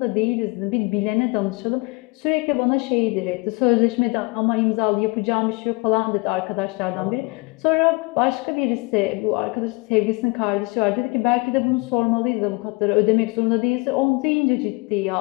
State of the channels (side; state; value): right; quieter; 27.3 dB